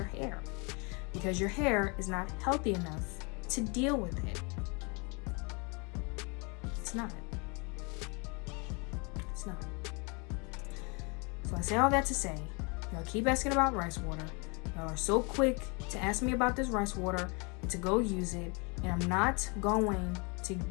hair because your hair is not healthy enough to deal with it. It's not. It's not. So I say all that to say, y'all keep asking about rice water. Y'all are so quick to ask me about this rice water and to go use it. And I'm not going to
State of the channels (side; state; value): right; quieter; 31.8 dB